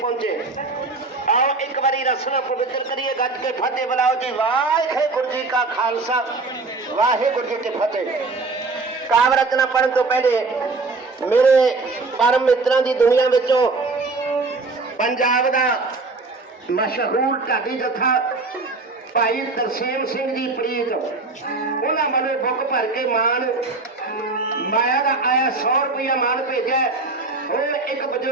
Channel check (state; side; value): quieter; left; 3.7 dB